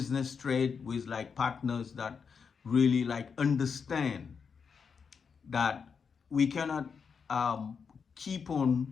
trade with like partners that really like understand that we cannot keep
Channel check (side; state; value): right; quieter; 6.0 dB